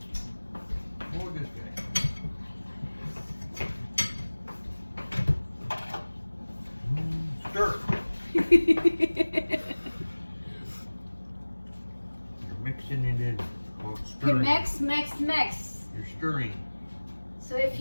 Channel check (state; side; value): inverted; both; correlation -1.00